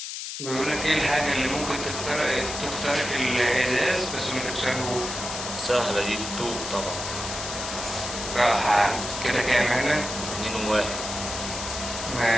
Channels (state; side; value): noise; left; hiss, 6 dB below the sound